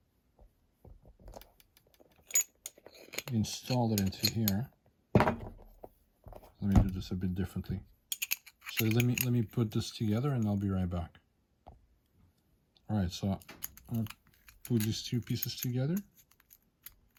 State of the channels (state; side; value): identical; both; correlation 1.00